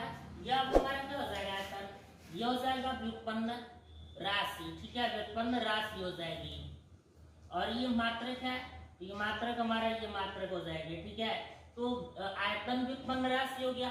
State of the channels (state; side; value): identical; both; correlation 1.00